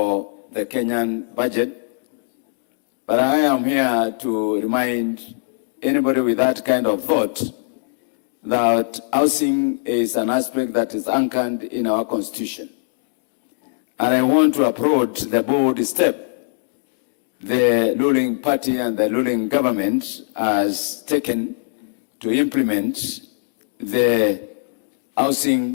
the Kenyan budget, but I am here to remind anybody with that kind of thought that housing is an aspect that is anchored in our Constitution. And I want to applaud the bold step the ruling party and the ruling government has taken to implement the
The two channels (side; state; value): right; silent; digital silence